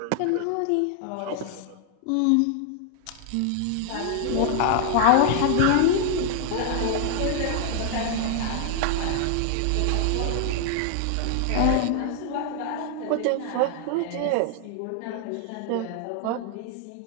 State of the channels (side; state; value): both; different; correlation 0.00